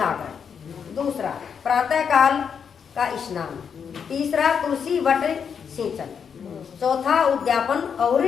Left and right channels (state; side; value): quieter; right; 7.0 dB